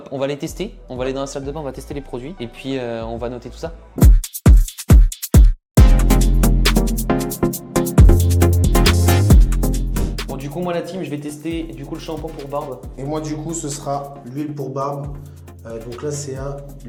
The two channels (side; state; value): both; identical; correlation 1.00